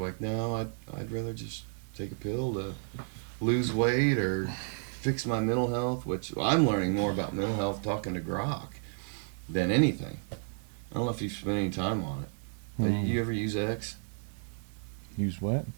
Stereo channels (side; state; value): left; silent; 57 dB below the other